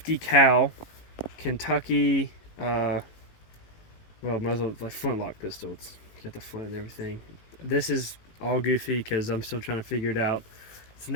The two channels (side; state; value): right; late; 18 ms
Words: cal Kentucky, muzzle, like flintlock pistol. It's got the flint and everything. This is all goofy because I'm still trying to figure it out. It's